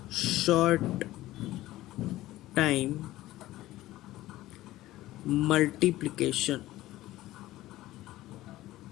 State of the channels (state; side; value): quieter; right; 16.2 dB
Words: short time multiplication।